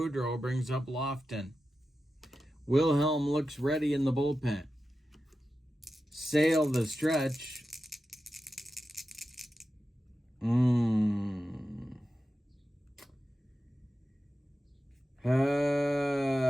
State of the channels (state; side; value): normal; both; correlation 0.92